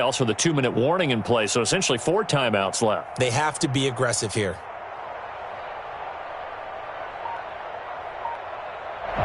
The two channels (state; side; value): identical; both; correlation 1.00